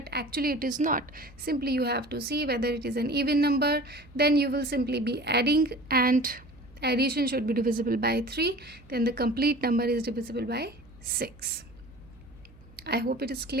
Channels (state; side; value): noise; right; hum, 24 dB below the sound